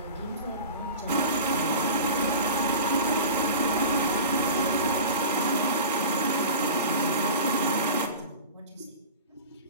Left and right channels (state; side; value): inverted; both; correlation -0.35